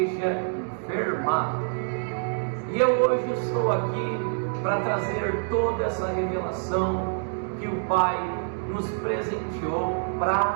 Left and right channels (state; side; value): silent; left; digital silence